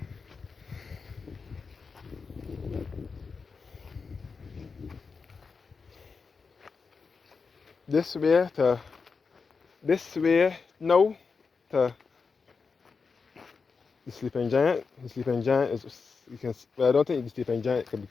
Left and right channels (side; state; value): right; quieter; 5.0 dB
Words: This way now to the Sleeping Giant. The Sleeping Giant is, you can, well, I don't think the Sleeping Giant can be